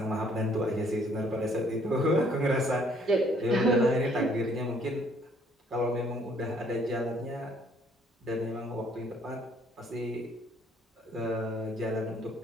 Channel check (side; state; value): both; normal; correlation 0.63